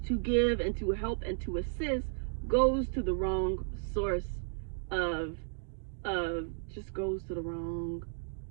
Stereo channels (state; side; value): silent; left; digital silence